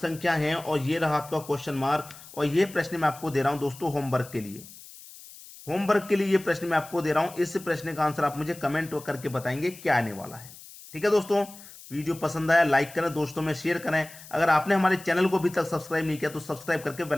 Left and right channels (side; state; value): left; noise; hiss, 18 dB below the sound